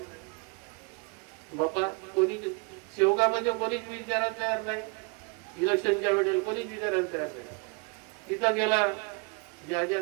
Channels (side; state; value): left; quieter; 32.1 dB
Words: बाबा कोणी सेवकामध्ये कोणीच विचारायला तयार नाही. इलेक्शनच्या वेळेला कोणीच विचारायला तयार नाही. तिथं गेला, ज्या